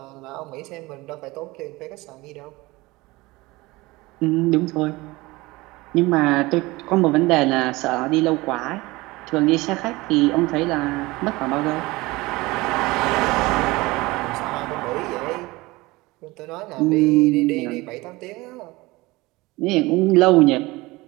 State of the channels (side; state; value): left; quieter; 21.4 dB